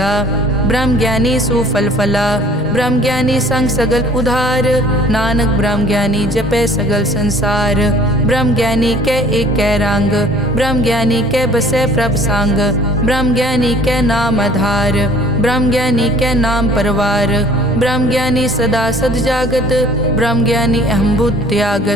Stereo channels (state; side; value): normal; both; correlation 0.52